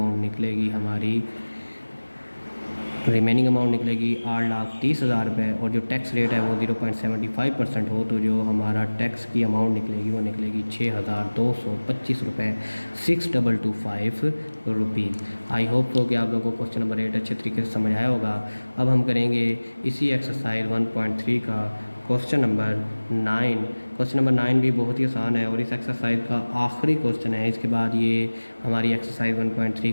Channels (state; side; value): inverted; both; correlation -1.00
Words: निकलेगी 8,30,000 रुपये। और जो टैक्स रेट है वो 0.75% हो, तो जो हमारा टैक्स की अमाउंट निकलेगी वो निकलेगी 6,225 रुपये, 6,225 रुपीज़। आई होप तो कि आप लोगों को क्वेश्चन नंबर 8 अच्छे तरीके से समझ आया होगा। अब हम करेंगे इसी एक्सरसाइज 1.3 का क्वेश्चन नंबर 9। क्वेश्चन नंबर 9 भी बहुत ही आसान है और इस एक्सरसाइज का आखिरी क्वेश्चन है। इसके बाद ये हमारी एक्सरसाइज 1.3